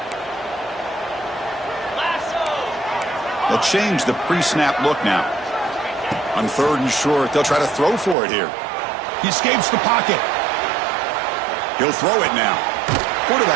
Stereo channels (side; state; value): left; drops out; at 8.2 s